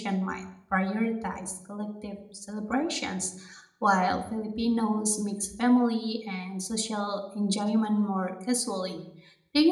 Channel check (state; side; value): identical; both; correlation 1.00